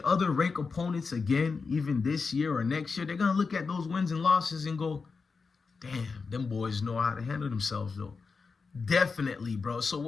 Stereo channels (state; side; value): quieter; right; 4.8 dB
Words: other ranked opponents again, even this year or next year, they're going to look at those wins and losses and go, damn, them boys know how to handle themselves, though. Definitely, bro. So